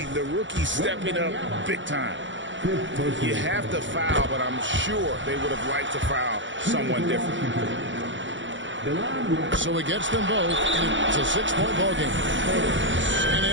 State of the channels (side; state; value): left; late; 0.55 ms